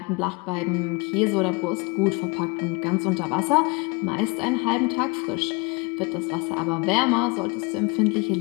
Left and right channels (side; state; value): right; quieter; 27.8 dB